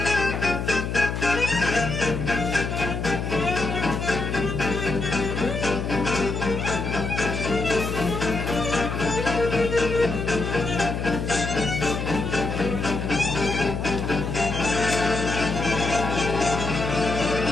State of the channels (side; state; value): left; noise; hum, 3 dB below the sound